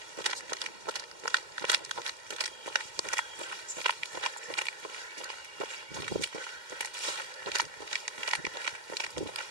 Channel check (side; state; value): left; late; 2.1 ms